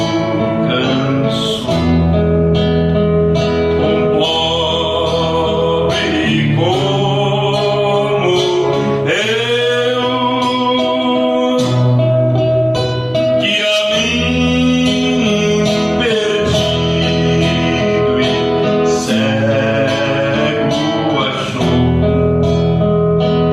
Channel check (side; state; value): both; identical; correlation 1.00